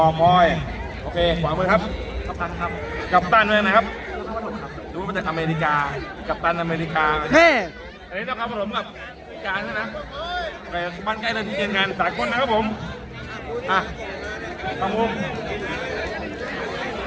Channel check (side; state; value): both; identical; correlation 1.00